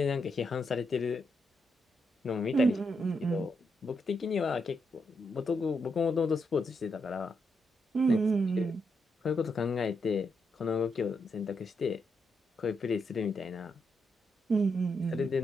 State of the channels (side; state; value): both; normal; correlation 0.81